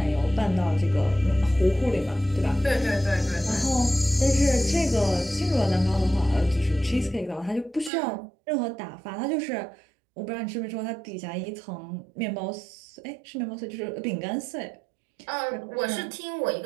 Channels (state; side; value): drops out; left; at 7.9 s